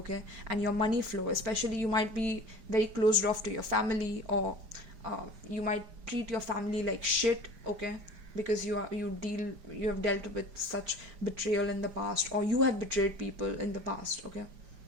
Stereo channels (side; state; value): left; late; 4.9 ms